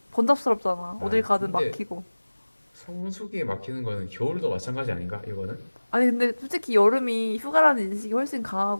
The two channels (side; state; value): both; inverted; correlation -1.00